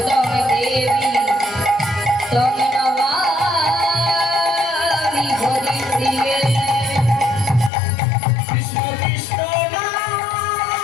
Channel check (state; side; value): drops out; right; at 7.7 s